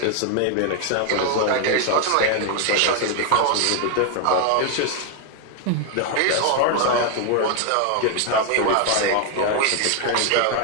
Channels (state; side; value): different; both; correlation 0.00